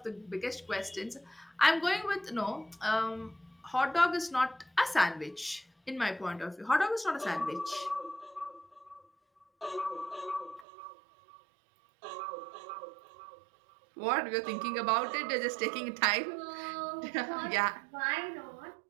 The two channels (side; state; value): left; drops out; at 10.7 s